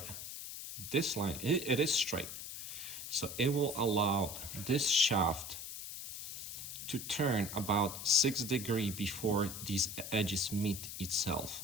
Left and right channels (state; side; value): noise; left; hiss, 8 dB below the sound